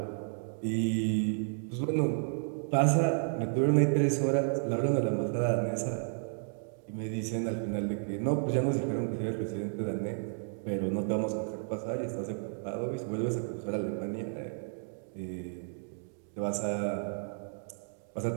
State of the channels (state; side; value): silent; left; digital silence